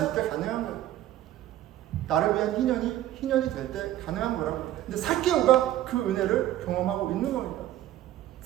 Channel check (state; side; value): quieter; left; 13.4 dB